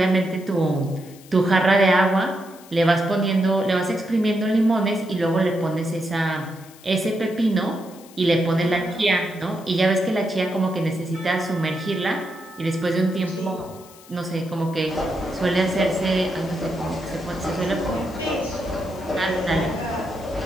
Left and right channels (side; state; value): left; noise; hiss, 23 dB below the sound